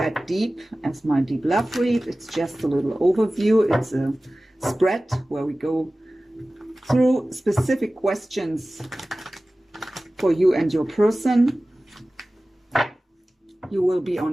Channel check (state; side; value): normal; both; correlation 0.97